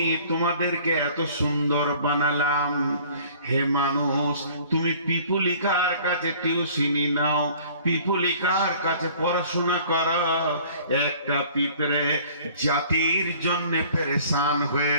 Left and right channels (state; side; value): inverted; both; correlation -0.52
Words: তোমাদেরকে এত সুন্দর বানালাম। হে মানুষ, তুমি পিপুলিকার কাছে টিউশনি নাও, পিপুলিকার কাছে পড়াশোনা করো। একটা পিঁপড়ে জাতির জন্য পেরেশান